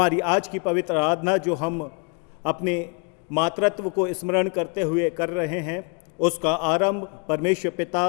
आज की पवित्र आराधना जो हम अपने मातृत्व को स्मरण करते हुए कर रहे हैं, उसका आरंभ परमेश्वर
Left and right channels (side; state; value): right; quieter; 36.0 dB